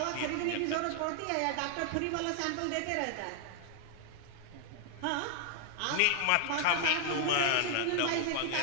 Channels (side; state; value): both; different; correlation 0.00